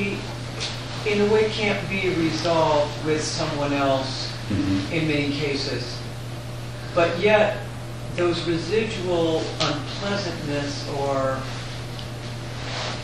in a way, can't be resolved with someone else in many cases. But yet, those residual unpleasantness or,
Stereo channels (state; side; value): identical; both; correlation 1.00